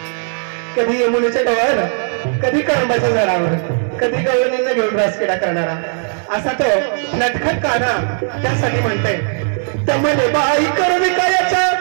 कधी यमुनेच्या डोळ्यावर कधी कळंबाच्या झाडावर कधी गवळणींना घेऊन रासकेडा करणारा असा तो नटखट काना त्यासाठी म्हणताय तमने बाई कर विकायाचा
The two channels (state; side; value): silent; left; 57 dB below the other